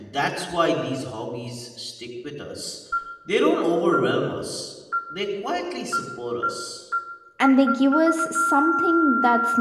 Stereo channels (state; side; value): identical; both; correlation 1.00